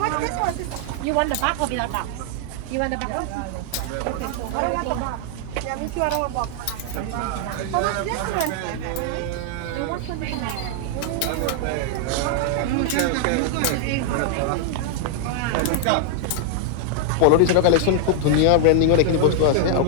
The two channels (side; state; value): both; different; correlation 0.00